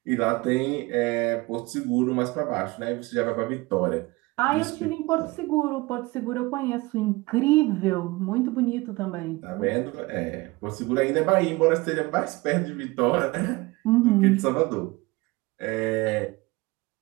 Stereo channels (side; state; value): left; quieter; 22.3 dB